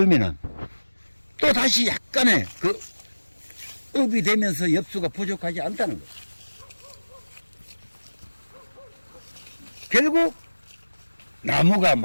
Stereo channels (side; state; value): both; inverted; correlation -1.00